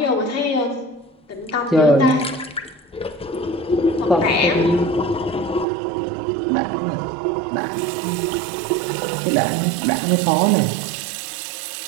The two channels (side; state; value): left; drops out; at 5.7 s